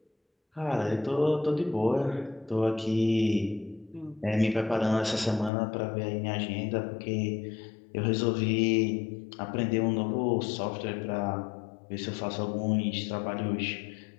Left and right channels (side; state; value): right; drops out; at 5.5 s